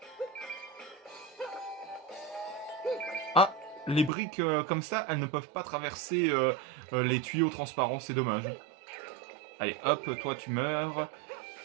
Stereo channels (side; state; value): left; drops out; at 4.1 s